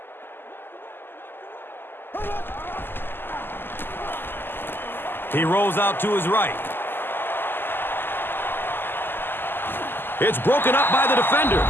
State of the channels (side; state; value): right; late; 0.099 ms